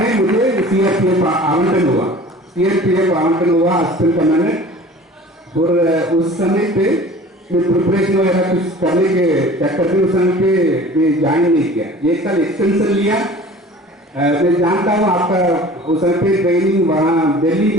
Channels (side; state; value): both; normal; correlation 0.44